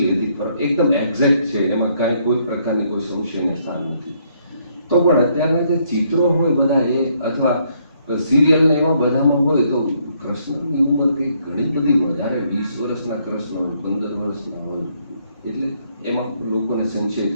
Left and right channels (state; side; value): inverted; both; correlation -0.71